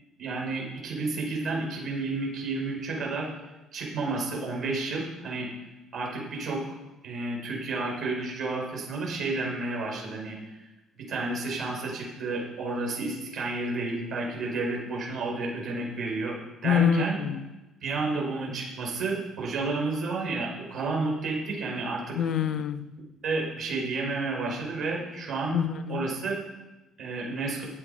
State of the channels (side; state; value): both; normal; correlation 0.59